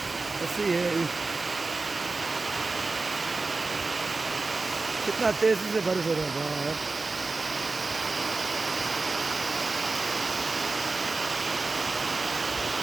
ऐसे ही है। कितना तेजी से बारिश हो रहा है बाहर।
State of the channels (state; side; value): quieter; left; 3.7 dB